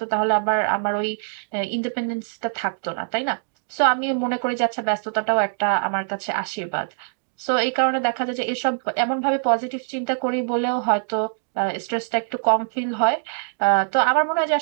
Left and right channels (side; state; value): left; silent; digital silence